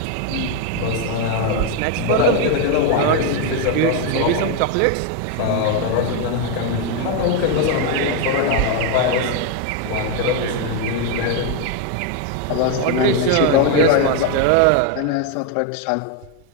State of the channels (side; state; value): both; different; correlation 0.01